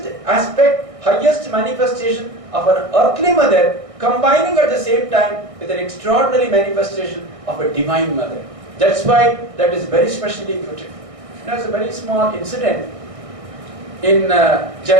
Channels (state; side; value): late; left; 1.6 ms